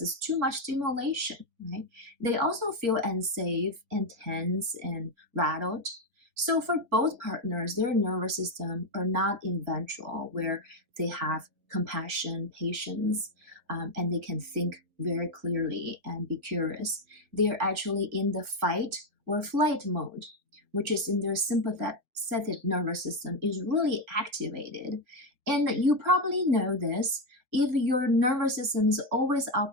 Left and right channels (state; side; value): late; left; 4.2 ms